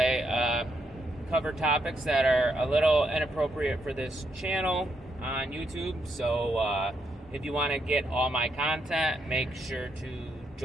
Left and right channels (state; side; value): normal; both; correlation 0.79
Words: cover topics that are a little inappropriate for this channel on YouTube. So if you want to get all my content, make sure to